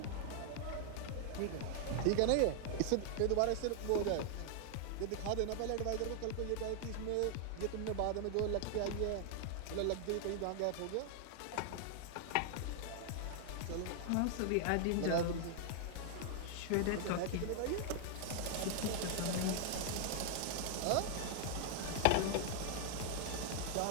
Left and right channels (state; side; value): different; both; correlation 0.00